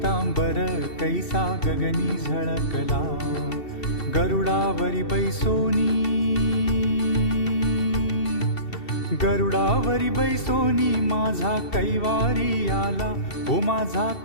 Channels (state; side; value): late; right; 2.7 ms